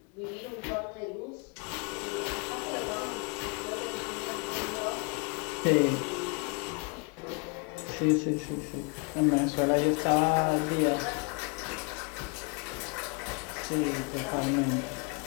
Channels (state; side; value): quieter; right; 32.8 dB